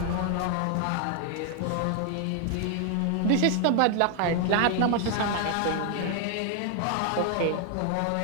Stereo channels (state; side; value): different; both; correlation 0.00